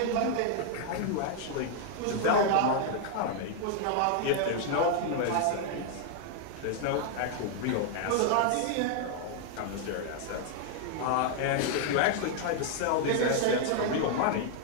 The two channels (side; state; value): both; different; correlation 0.00